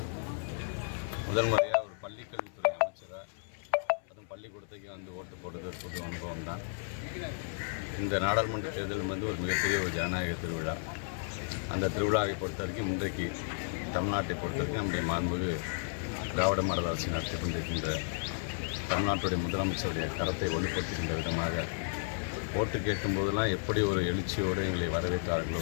முதல் முறையாக ஒரு பள்ளிக்கல்வித்துறை அமைச்சராக அதுவும் பள்ளிக்கூடத்துக்கு ஓட்டு போடுறது ஒரு புது அனுபவம் தான். இந்த நாடாளுமன்ற தேர்தல் ஒரு மிகப்பெரிய ஒரு ஜனநாயக திருவிழா. அந்த திருவிழாவை பொறுத்த வரைக்கும் இன்றைக்கு தமிழ்நாட்டை பொறுத்த வரைக்கும் நம்முடைய மாண்புமிகு திராவிட மாடல் அரசு நடத்தி கொண்டிருக்கின்ற தமிழ்நாட்டுடைய முதலமைச்சருடைய கரத்தை வலுப்படுத்துகின்ற விதமாக ஓட்டு கேட்கும்போதெல்லாம் எப்படி ஒரு எழுச்சியோடு எங்களை வரவேற்றார்களோ,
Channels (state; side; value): silent; right; 56 dB below the other